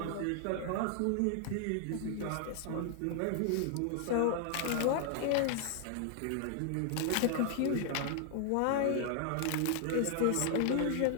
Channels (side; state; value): both; different; correlation 0.00